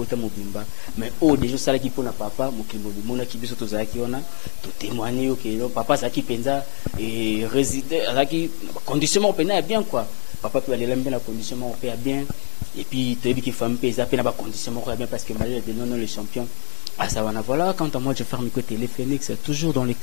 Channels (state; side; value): silent; right; digital silence